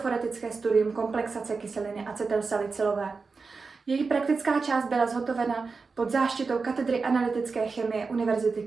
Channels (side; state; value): left; quieter; 4.5 dB